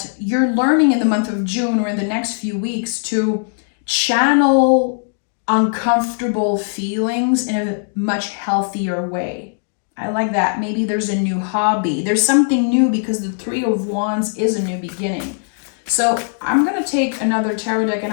you're learning in the month of June or in the next few weeks to channel uncomfortable feelings in a much healthier way. I like that. Maybe there's a new hobby. There's something new because the 3 of Wands is a new beginning. So I'm going to take another tarot deck and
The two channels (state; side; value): silent; right; 64 dB below the other